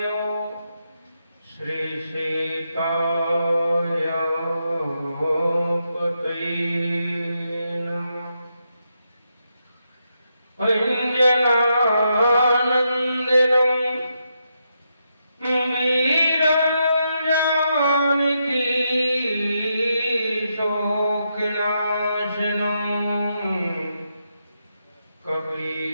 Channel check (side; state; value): both; inverted; correlation -0.82